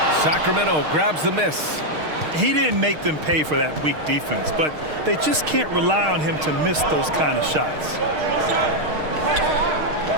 Sacramento grabs the miss. He didn't make them pay for that weak defense, but they just can't rely on him to miss those kind of shots.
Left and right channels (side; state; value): left; late; 6.5 ms